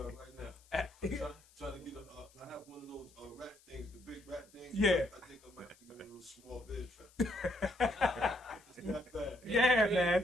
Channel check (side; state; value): left; noise; hiss, 27 dB below the sound